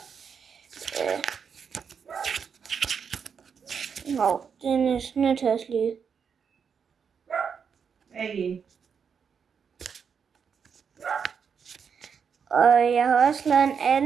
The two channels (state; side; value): quieter; left; 6.6 dB